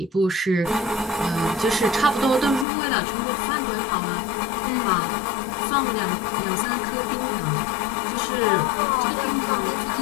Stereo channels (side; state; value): right; drops out; at 2.7 s